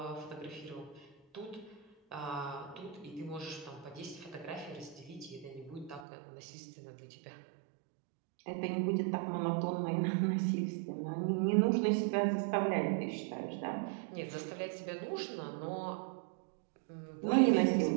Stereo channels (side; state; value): left; drops out; at 6.1 s